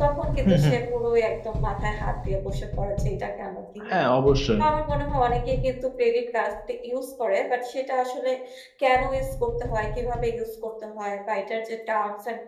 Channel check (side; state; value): both; identical; correlation 1.00